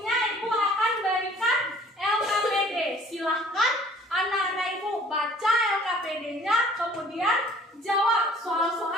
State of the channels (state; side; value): normal; both; correlation 0.53